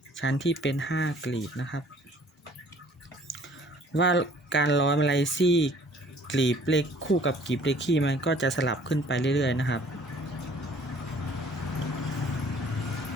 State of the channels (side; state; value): both; normal; correlation 0.55